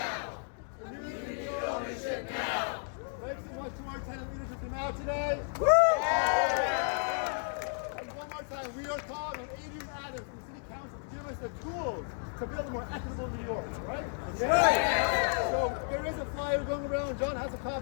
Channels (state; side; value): silent; right; 56 dB below the other